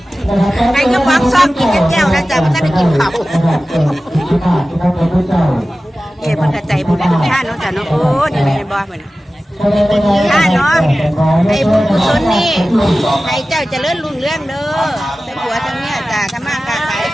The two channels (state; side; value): normal; both; correlation 0.96